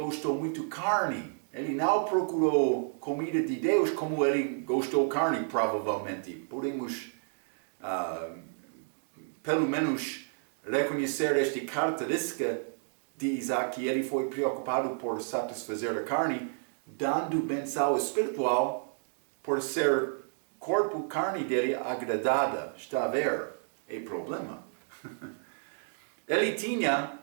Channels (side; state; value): left; silent; digital silence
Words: muito de carne. Ele não procurou comida de Deus como ele gostou de carne, provavelmente. Podemos, pelo menos, reconhecer esta característica de Isaac, que ele foi preocupado por satisfazer a carne, dando benção espiritual por ser corpo, carne dele agradada. Está a ver? É problema. Ele tinha,